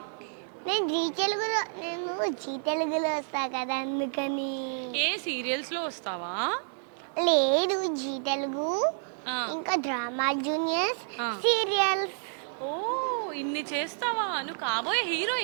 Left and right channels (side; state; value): left; silent; digital silence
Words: నేను జీ తెలుగులో వస్తా కదా, అందుకని. ఏ సీరియల్స్ లో వస్తావా? లేదు, జీ తెలుగు ఆ. ఇంకా డ్రామా జూనియర్స్ ఆ. సీరియల్స్. ఓ ఇన్ని చేస్తావా? నువ్వు కాబోయే